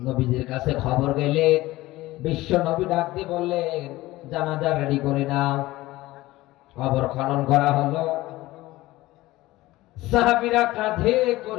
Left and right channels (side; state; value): right; quieter; 18.1 dB